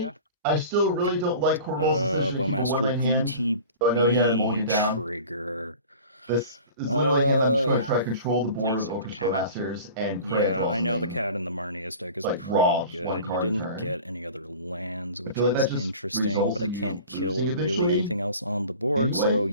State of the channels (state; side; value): inverted; both; correlation -0.41